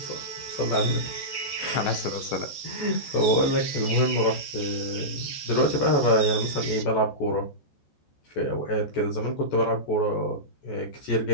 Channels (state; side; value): late; right; 14 ms